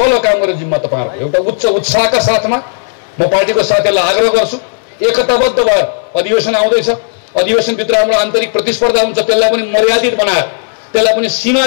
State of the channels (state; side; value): silent; right; digital silence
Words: काम गर्ने जिम्मा तपाईहरुको। एउटा उच्च उत्साहका साथमा म पार्टीको साथीहरूलाई आग्रह गर्छु, एकताबद्ध भएर अधिवेशन आउँदैछ, अधिवेशनभित्र हाम्रो आन्तरिक प्रतिस्पर्धा हुन्छ, त्यसलाई पनि मर्यादित बनाएर, त्यसलाई पनि